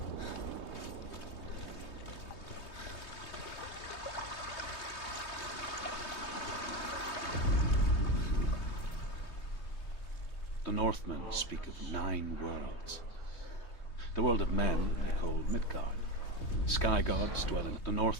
The Northmen speak of 9 worlds. The world of men they call Midgard. Sky gods dwell in. The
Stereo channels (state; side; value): late; right; 3.2 ms